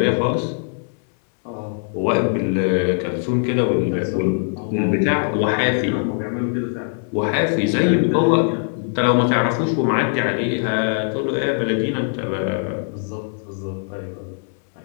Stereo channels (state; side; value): silent; right; digital silence